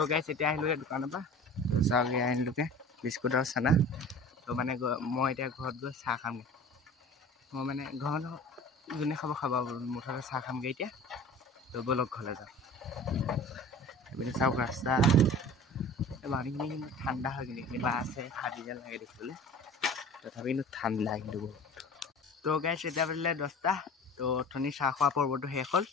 गाइस इतना आहिलुगे दुकान पा तो चागे आनिलुगे बिस्कुट और चाना। तो माने मैं इतना घर गई चाह खामगे मैं माने घर जोने खाब खाब मुठते चाह खामगे इतना। तो बोलक घरले जाओ इपिने चाওক रास्ता पानी ठंडा है कि आसे फाटी जेन लगे देखिए तथापि ठंडा कि बहुत। तो गाइस इतना बजिले 10टा तो अथनि चाह खा पर्वतो शेष हल।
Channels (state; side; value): normal; both; correlation 0.40